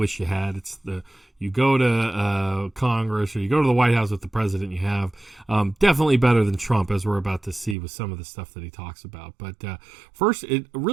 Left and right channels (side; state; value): left; drops out; at 7.8 s